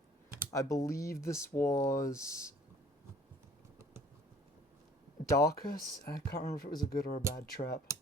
I believe this was... Darkus? I can't remember if it was a good or a bad trap.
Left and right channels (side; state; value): both; normal; correlation 0.54